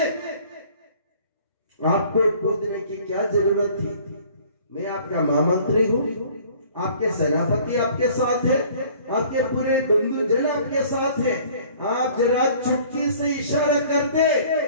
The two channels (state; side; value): inverted; both; correlation -0.52